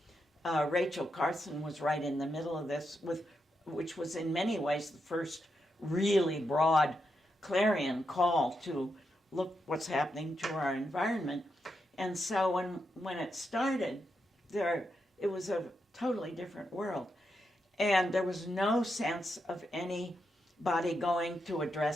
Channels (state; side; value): normal; both; correlation 0.84